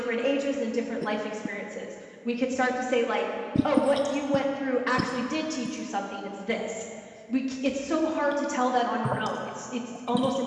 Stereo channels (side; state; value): both; identical; correlation 1.00